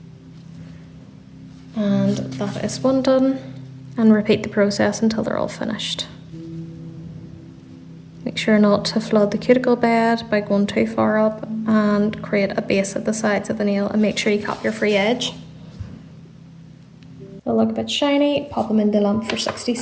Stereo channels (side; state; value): both; identical; correlation 1.00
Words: and that is one done, and repeat the process until they're all finished. Make sure not to flood the cuticle bed by going too far up, and create a base at the sides of the nail, and make sure you cap your free edge. They'll look a bit shiny, pop them in the lamp for 60